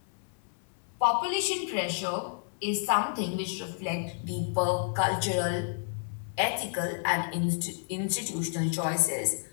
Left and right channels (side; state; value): right; silent; 57 dB below the other